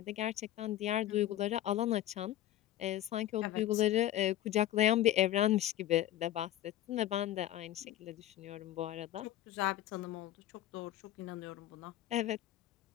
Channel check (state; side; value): quieter; right; 13.3 dB